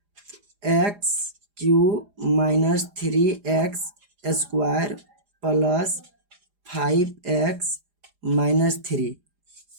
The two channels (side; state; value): left; late; 4.9 ms